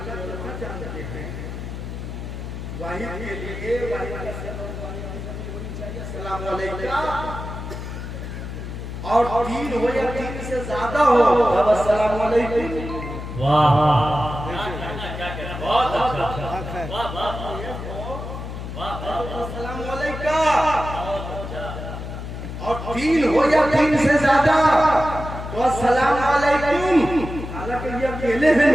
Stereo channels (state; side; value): noise; left; hum, 8 dB below the sound